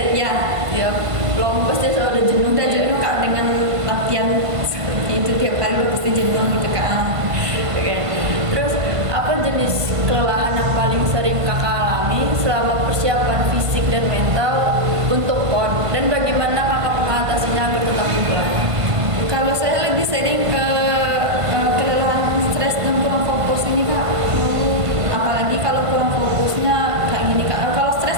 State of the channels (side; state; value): left; late; 1.5 ms